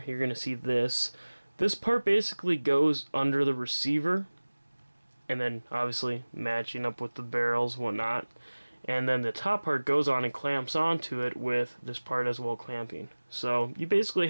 you're going to see this part basically goes under the receiver, and then obviously matching up with the barrels and whatnot, and then the top part goes on and clamps onto it with this part as well clamping. So you basically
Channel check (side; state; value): both; inverted; correlation -1.00